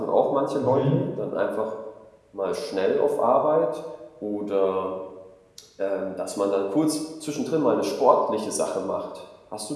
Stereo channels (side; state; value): both; identical; correlation 1.00